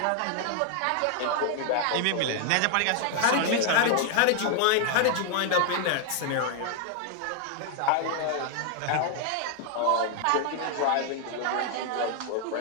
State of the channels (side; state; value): both; different; correlation 0.00